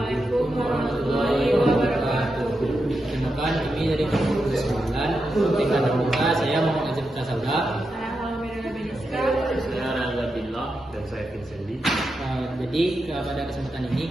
warahmatullahi wabarakatuh. Perkenalkan, kami dari kelompok 9 tingkat terbuka. Saya Muhammad Azim Kasabda. Saya Alhamdulillah Beniska. Saya Reza Billah dan saya Vincent Lee. Jadi pada kesempatan ini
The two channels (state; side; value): normal; both; correlation 0.87